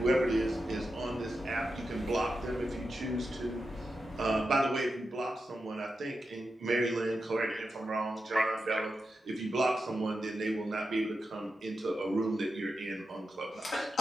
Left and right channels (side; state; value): both; normal; correlation 0.89